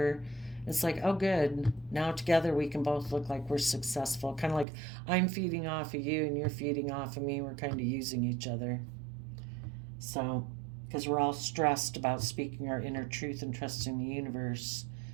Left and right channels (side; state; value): left; drops out; at 4.7 s